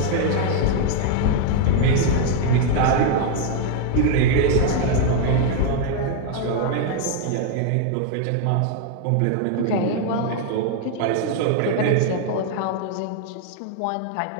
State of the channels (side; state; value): both; different; correlation 0.00